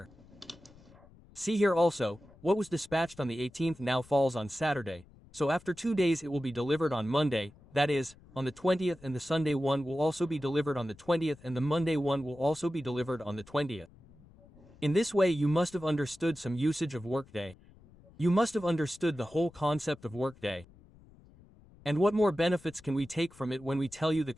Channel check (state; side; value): noise; left; rumble, 25 dB below the sound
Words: See here also, what was dispatched on the 18th now falls on Saturday. So after 2 days it will be delivered on Monday, that is, on the 20th, and the Sunday one will also be delivered on the 20th, and the Monday one will also be delivered on the 20th. In this way you must have understood some usage of Workday. You must have understood the whole concept of Workday. And what more benefits can we take from it when we tell you the